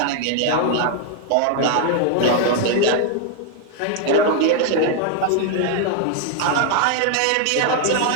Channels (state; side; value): different; both; correlation 0.00